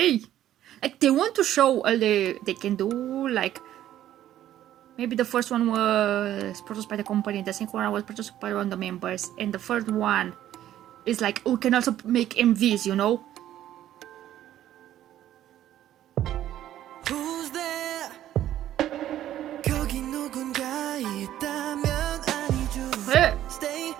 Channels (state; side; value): quieter; left; 12.3 dB